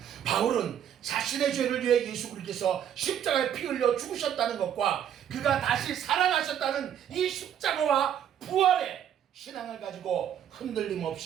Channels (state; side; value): quieter; left; 9.7 dB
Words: 바울은 자신의 죄를 위해 예수 그리스도께서 십자가에 피 흘려 죽으셨다는 것과 그가 다시 살아나셨다는 이 십자가와 부활의 신앙을 가지고 흔들림